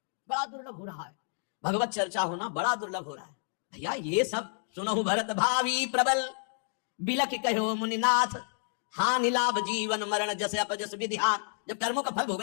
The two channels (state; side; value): silent; right; digital silence